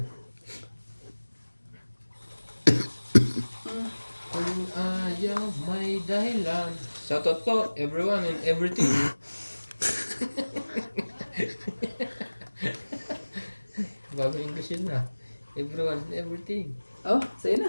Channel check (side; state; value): both; inverted; correlation -1.00